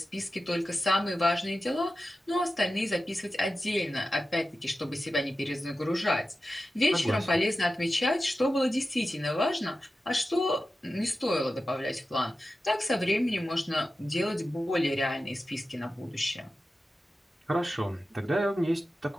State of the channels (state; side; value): normal; both; correlation 0.93